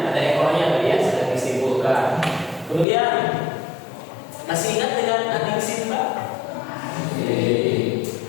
ada ekornya tadi ya sudah disimpulkan. Kemudian masih ingat dengan adik Simba?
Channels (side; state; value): right; drops out; at 2.9 s